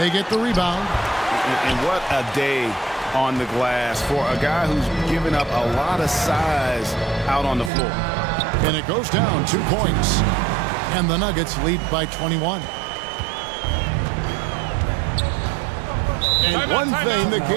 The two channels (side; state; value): left; drops out; at 7.7 s